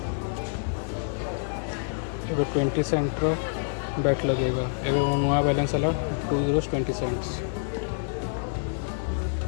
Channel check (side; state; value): right; silent; 60 dB below the other